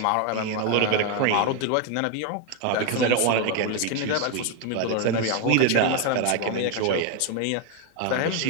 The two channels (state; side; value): different; both; correlation 0.01